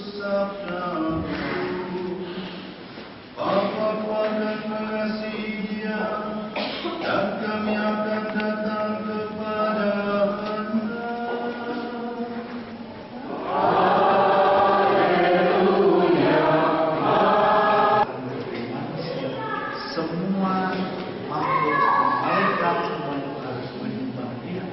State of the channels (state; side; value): identical; both; correlation 1.00